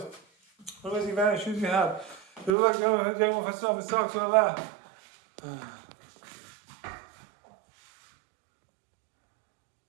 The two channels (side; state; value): left; drops out; at 2.6 s